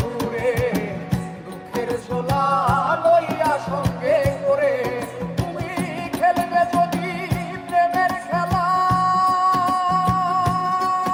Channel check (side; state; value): both; identical; correlation 1.00